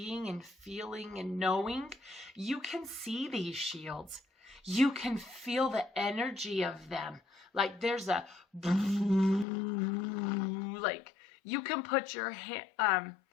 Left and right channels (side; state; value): right; drops out; at 9.5 s